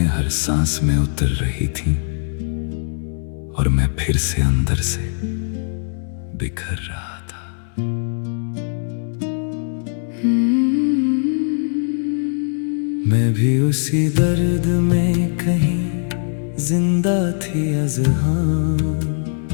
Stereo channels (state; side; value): silent; right; 65 dB below the other